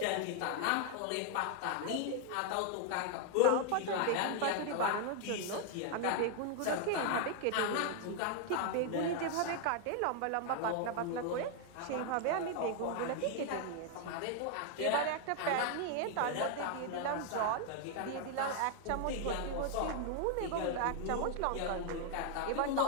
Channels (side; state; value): both; different; correlation 0.00